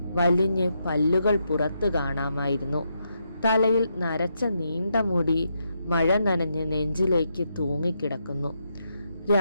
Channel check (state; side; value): inverted; both; correlation -0.81